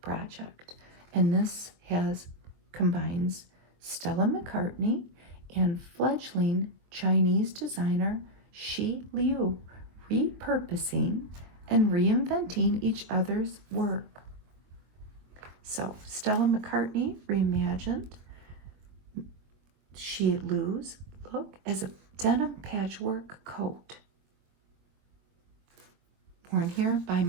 project, and this combines Stella McCartney and fledgling Chinese designer Shi Liu repurposing and reinventing each other's work. So Stella McCartney reimagined Shi Liu's look as a denim patchwork coat. And here by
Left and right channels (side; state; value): left; late; 23 ms